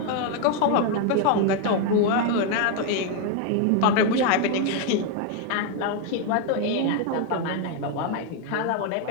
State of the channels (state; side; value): different; both; correlation 0.01